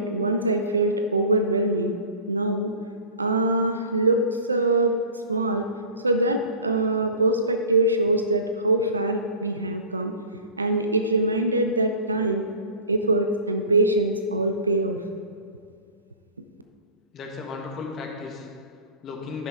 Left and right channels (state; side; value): inverted; both; correlation -0.41